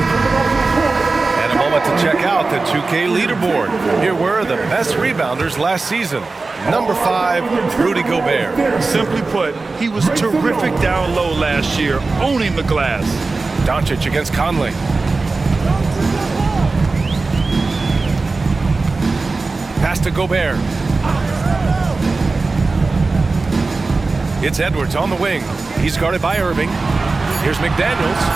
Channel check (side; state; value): left; quieter; 3.7 dB